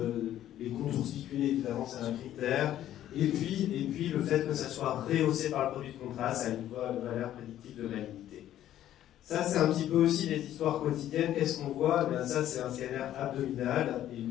les contours spiculés, évidemment, c'est un critère, et puis le fait que ça soit rehaussé par le produit de contraste, ça a une valeur prédictive de malignité. Ça, c'est un petit peu aussi les histoires quotidiennes. Qu'est-ce qu'on voit? Ça, c'est un scanner abdominal, et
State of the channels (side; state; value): right; quieter; 12.2 dB